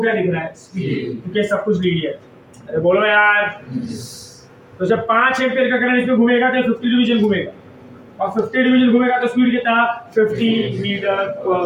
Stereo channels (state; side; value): identical; both; correlation 1.00